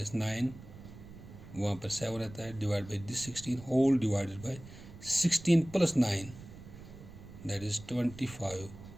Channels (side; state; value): right; noise; rumble, 16 dB below the sound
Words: 9 वहाँ पर 7 आता है divide by this 16 whole divided by 16 + 9 that is 25